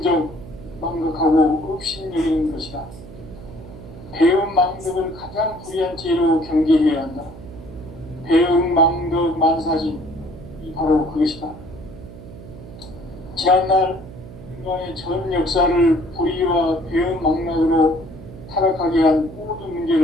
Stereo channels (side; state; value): right; noise; hum, 16 dB below the sound